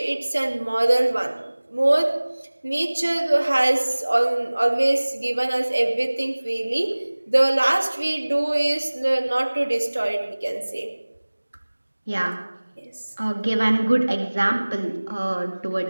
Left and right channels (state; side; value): inverted; both; correlation -1.00